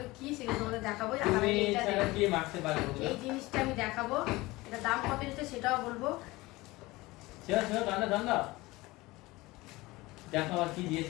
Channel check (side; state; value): right; quieter; 20.7 dB